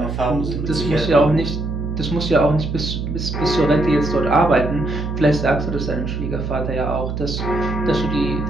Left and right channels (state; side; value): noise; right; hum, 4 dB below the sound